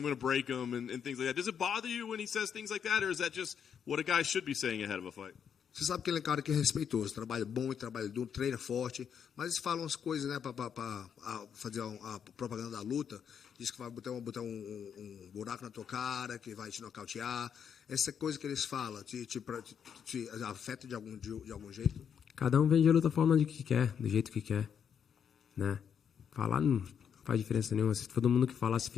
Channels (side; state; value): right; quieter; 7.8 dB